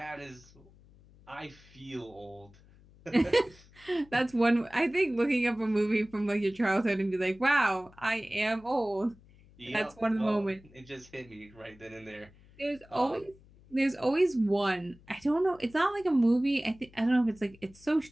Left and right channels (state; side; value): noise; left; hum, 26 dB below the sound